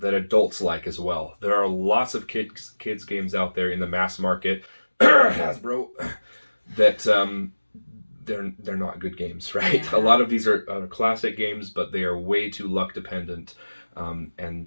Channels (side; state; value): both; inverted; correlation -1.00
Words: that adults like as well. There are lots of kids games out there in the mass market, Hasbro, that they're not good games, right? Yeah. A lot of these are classic games, but they are way too luck dependent,